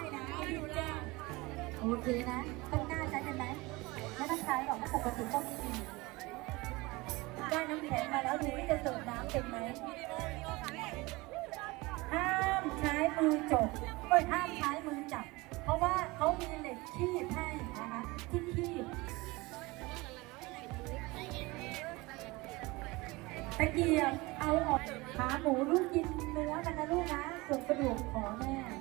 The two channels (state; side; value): quieter; left; 22.8 dB